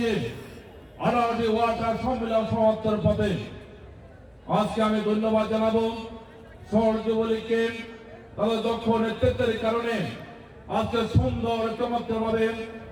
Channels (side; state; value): both; identical; correlation 1.00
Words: 18টি ওয়ার্ড আর সম্মেলন সমাপ্তির পথে। আজকে আমি ধন্যবাদ জানাবো শহর যুবলীগকে, তাদের দক্ষ নেতৃত্বের কারণে আজকে সুন্দর চমৎকারভাবে